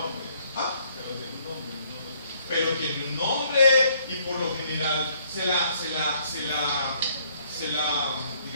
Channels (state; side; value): inverted; both; correlation -0.65